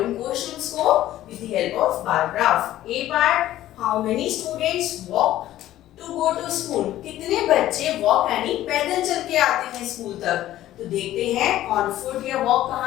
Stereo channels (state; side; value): quieter; right; 13.8 dB